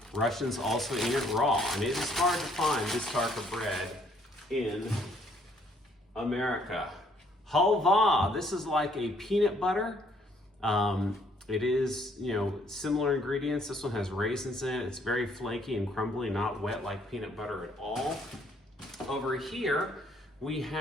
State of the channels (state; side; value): normal; both; correlation 0.65